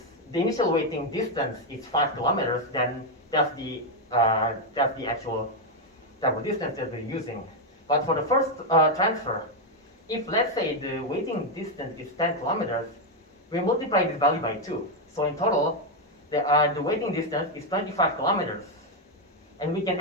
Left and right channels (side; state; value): both; normal; correlation 0.02